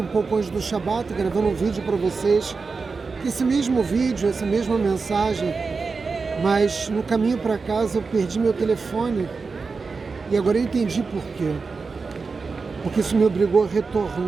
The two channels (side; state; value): left; quieter; 4.6 dB